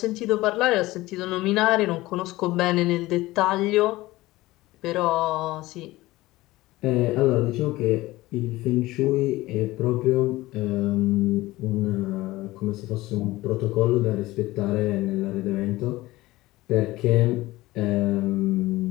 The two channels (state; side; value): quieter; right; 18.6 dB